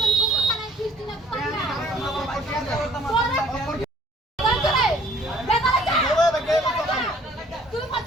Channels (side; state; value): both; normal; correlation 0.58